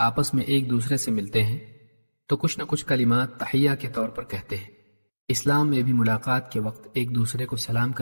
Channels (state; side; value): inverted; both; correlation -1.00